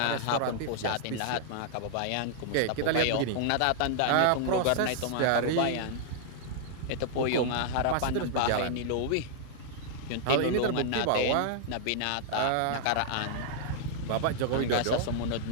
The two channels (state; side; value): different; both; correlation -0.01